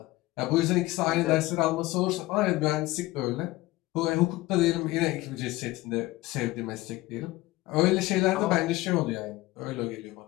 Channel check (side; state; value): right; quieter; 19.0 dB